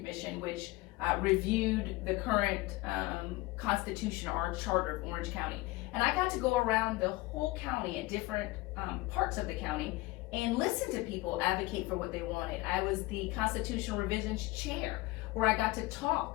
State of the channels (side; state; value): right; quieter; 20.6 dB